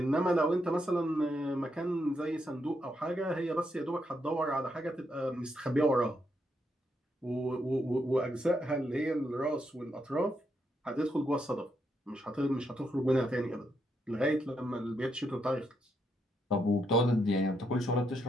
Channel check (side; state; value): both; normal; correlation 0.79